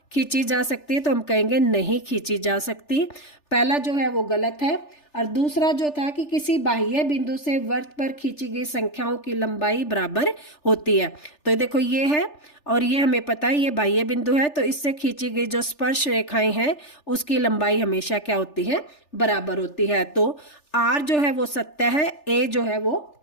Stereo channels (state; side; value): late; right; 3.4 ms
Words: खींची जा सकती है, तो हम कहेंगे नहीं खींची जा सकती। पहला जो है वो गलत है, और दूसरा जो था कि किसी बाह्य बिंदु से वृत्त पर खींची गई संख्याओं की लंबाई बराबर होती है। तो देखो ये है, और ये हमें पता है ये बाह्य बिंदु है, तो इससे खींची गई जो स्पर्श रेखाएं हैं उसकी लंबाई हमेशा क्या होती है बराबर होती है। तो आर जो है वो सत्य है, ए जो है वो